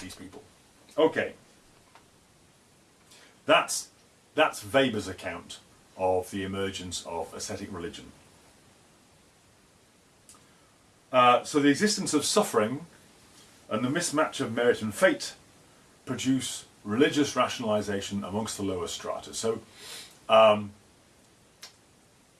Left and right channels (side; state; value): both; identical; correlation 1.00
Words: people. Okay. That's Weber's account of the emergence of ascetic religion. So the existence of suffering and the mismatch of merit and fate produce religious rationalization amongst the lower strata. So